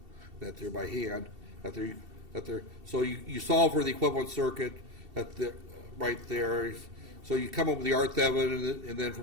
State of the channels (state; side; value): late; left; 2.7 ms